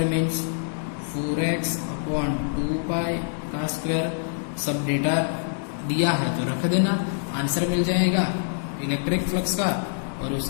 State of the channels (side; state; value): right; silent; digital silence